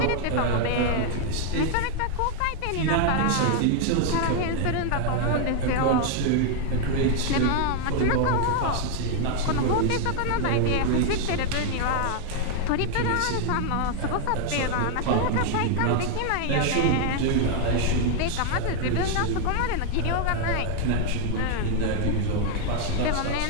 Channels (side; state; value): both; different; correlation 0.00